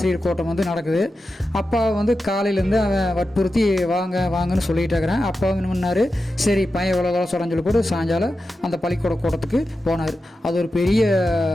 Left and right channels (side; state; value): both; normal; correlation 0.91